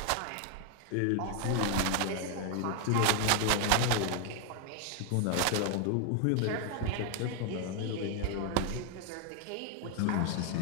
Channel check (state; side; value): different; both; correlation 0.00